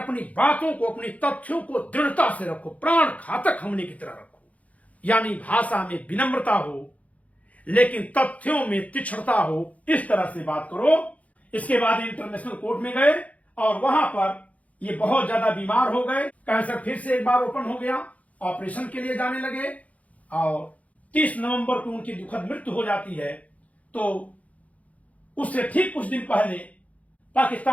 बातों को, अपनी तथ्यों को दृढ़ता से रखो, प्राण घातक हमले की तरह रखो। यानी भाषा में विनम्रता हो लेकिन तथ्यों में तीक्ष्णता हो, इस तरह से बात करो। इसके बाद इंटरनेशनल कोर्ट में गए और वहां पर ये बहुत ज्यादा बीमार हो गए, कैंसर फिर से एक बार ओपन हो गया, ऑपरेशन के लिए जाने लगे और 30 नवंबर को उनकी दुखद मृत्यु हो जाती है। तो उससे ठीक कुछ दिन पहले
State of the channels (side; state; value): right; late; 0.068 ms